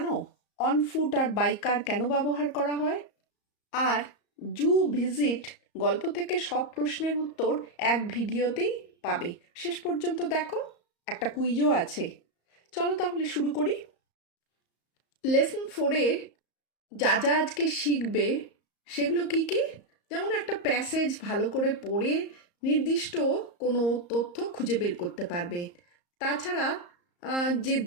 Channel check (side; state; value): right; late; 34 ms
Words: অন ফুট আর বাইকার কেন ব্যবহার করা হয়? আর জু ভিজিট গল্প থেকে সব প্রশ্নের উত্তর এক ভিডিওতেই পাবে। শেষ পর্যন্ত দেখো, একটা কুইজও আছে। চলো তাহলে শুরু করি। লেসন 4-এ যা যা আজকে শিখবে সেগুলো কি কি? যেমন একটা প্যাসেজ ভালো করে পড়ে নির্দিষ্ট কোনো তথ্য খুঁজে বের করতে পারবে। তাছাড়া যে